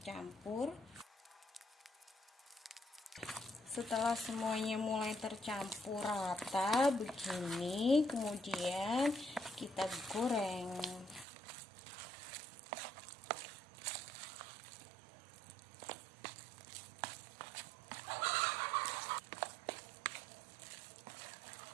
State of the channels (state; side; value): drops out; left; at 11.2 s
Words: Setelah semuanya mulai tercampur rata begini, kemudian kita goreng.